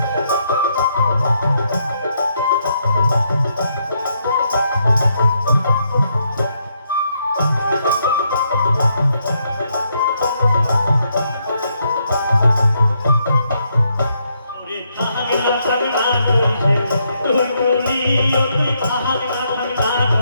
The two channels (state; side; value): inverted; both; correlation -0.76